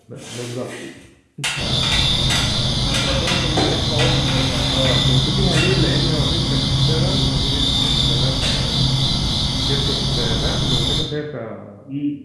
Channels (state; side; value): identical; both; correlation 1.00